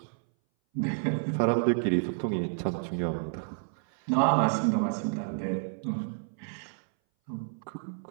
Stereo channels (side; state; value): left; silent; 58 dB below the other